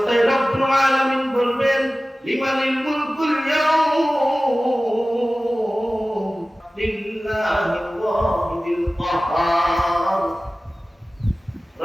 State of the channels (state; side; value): normal; both; correlation 0.97